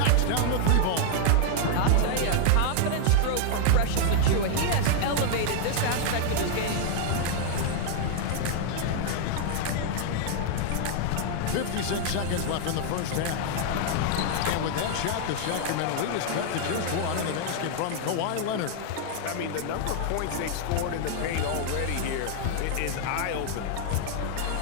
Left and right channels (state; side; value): different; both; correlation 0.00